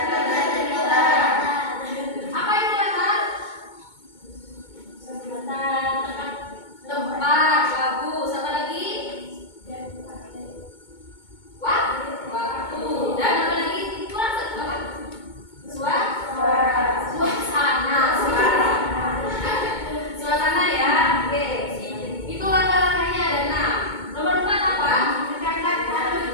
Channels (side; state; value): right; late; 2.2 ms